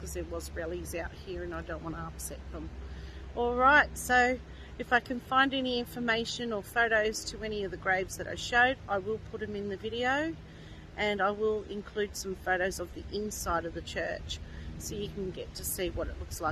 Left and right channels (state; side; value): identical; both; correlation 1.00